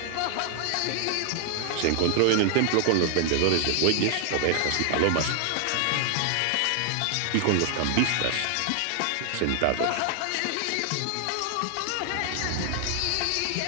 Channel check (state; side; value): different; both; correlation 0.00